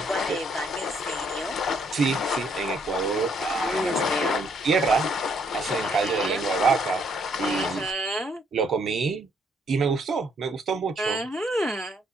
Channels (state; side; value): normal; both; correlation 0.69